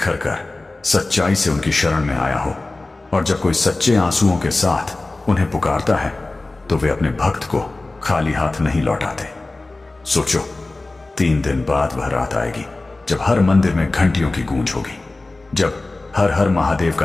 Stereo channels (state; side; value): quieter; right; 3.1 dB